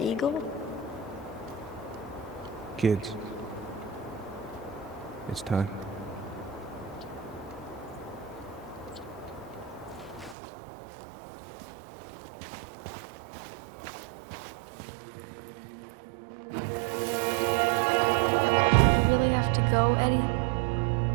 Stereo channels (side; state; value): left; drops out; at 10.4 s